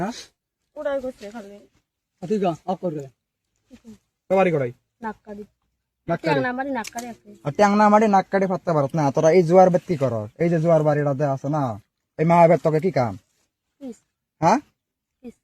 উড়াই করছে খালি ঠিক আছে অফ করে বাড়ি করাই নাককারি নাক ট্যাংনা মারি নাককারি আছে ট্যাংনা মারি নাক কাটি ফাটতে পারত না তোরা এই জোয়ার বাদ কি করস এই যে জোয়ার বাড়িটাতে আছে না এই মাহাবের তোকে কি কাম কিস হ্যাঁ কিস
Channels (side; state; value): both; identical; correlation 1.00